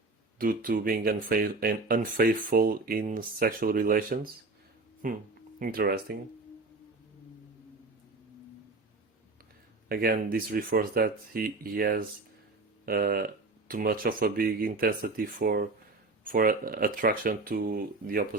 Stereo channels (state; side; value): quieter; left; 3.4 dB